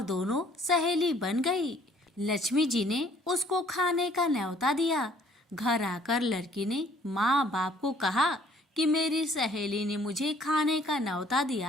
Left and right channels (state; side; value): normal; both; correlation 0.59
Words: दोनों सहेली बन गई। लक्ष्मी जी ने उसको खाने का न्योता दिया। घर आकर लड़की ने माँ बाप को कहा कि मेरी सहेली ने मुझे खाने का न्योता